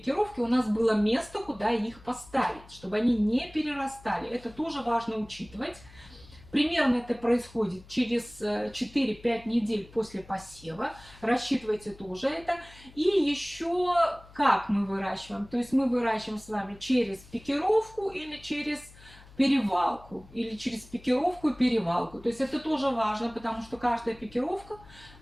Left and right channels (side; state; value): left; noise; hum, 22 dB below the sound